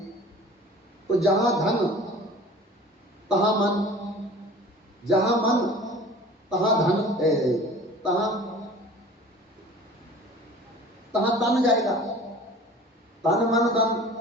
तो जहां धन तहां मन, जहां मन तहां धन, तहां तहां तन जाएगा। तन मन धन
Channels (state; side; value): normal; both; correlation 0.44